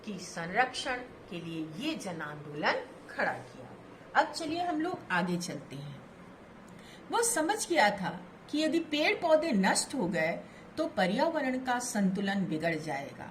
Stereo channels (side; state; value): both; identical; correlation 1.00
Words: की संरक्षण के लिए ये जन आंदोलन खड़ा किया। अब चलिए हम लोग आगे चलते हैं। वो समझ गया था कि यदि पेड़ पौधे नष्ट हो गए तो पर्यावरण का संतुलन बिगड़